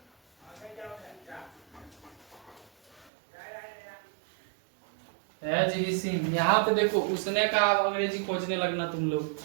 हैज ही सीन। यहाँ पे देखो उसने का अंग्रेजी खोजने लगना तुम लोग।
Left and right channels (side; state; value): left; drops out; at 3.1 s